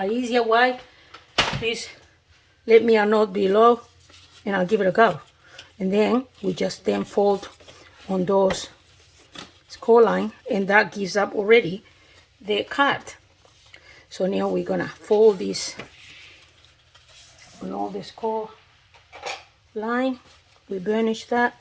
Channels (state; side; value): identical; both; correlation 1.00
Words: easier way, please let me know below, and I'll give it a go. And then we just then fold on those score line, and that gives up already the card. So now we're gonna fold this on all the score line. We burnish that.